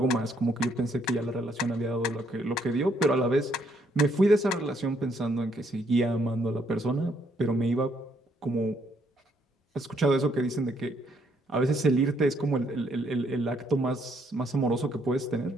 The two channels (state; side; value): normal; both; correlation 0.71